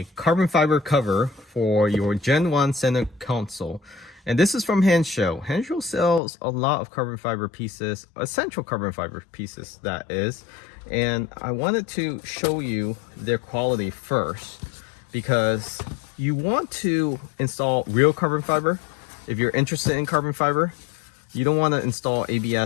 carbon fiber cover for your Gen 1 center console. And this is from Hansshow. Hansshow sells a lot of carbon fiber pieces, essential carbon fiber pieces that is. And I wanted to show you their quality first because you want to install real carbon fiber. If you're interested in carbon fiber, you don't want to install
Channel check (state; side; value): drops out; right; at 6.2 s